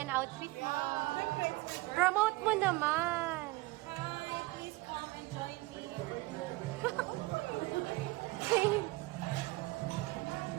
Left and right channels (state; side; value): quieter; left; 21.6 dB